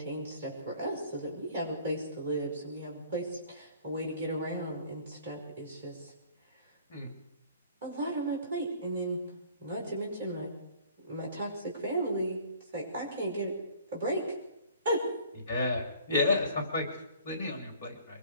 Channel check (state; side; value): inverted; both; correlation -0.53